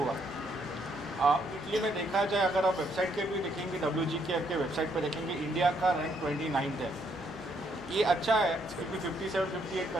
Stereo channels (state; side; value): normal; both; correlation 0.72